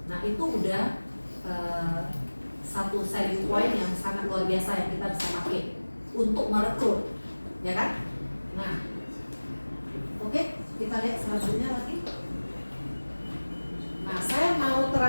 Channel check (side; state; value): both; inverted; correlation -1.00